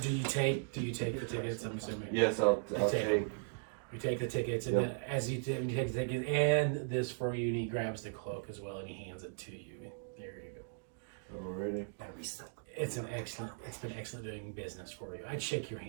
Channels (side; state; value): left; silent; digital silence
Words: Do you take the tickets? I'm assuming. Yes, I'll take take. You take the tickets, and Yep. then as you take the tickets and this for you, and he grabs the cloak as well, and he hands it to you. There you go. Already. It's been excellent doing business for you. I'd shake your